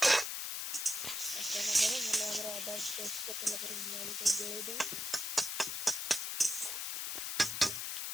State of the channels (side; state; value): left; noise; hiss, 2 dB below the sound